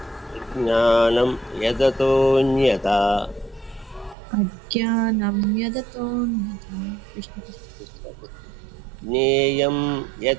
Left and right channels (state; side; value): drops out; left; at 4.2 s